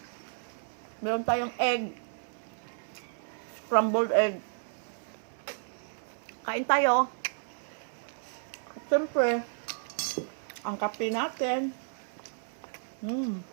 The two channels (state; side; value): silent; left; 56 dB below the other